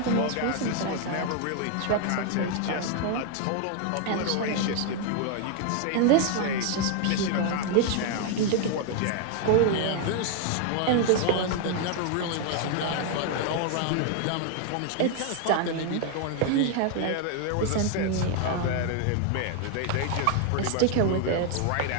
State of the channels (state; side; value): different; both; correlation 0.00